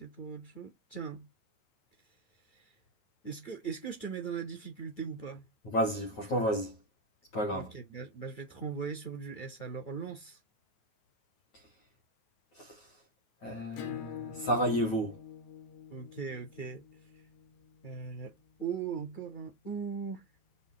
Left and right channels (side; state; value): right; late; 9.3 ms